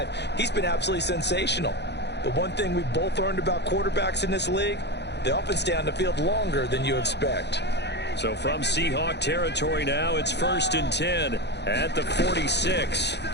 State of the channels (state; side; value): late; right; 0.50 ms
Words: He's been absolutely sensational. But one thing we've both learned about quarterbacks in this league, they often stay on the field longer than you expect. So from Seahawk territory now, it's 1st and 10. At the 46.